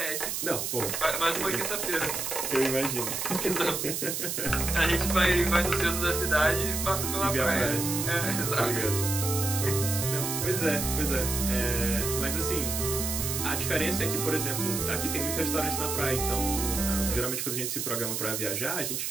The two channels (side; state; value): right; noise; hiss, 2 dB below the sound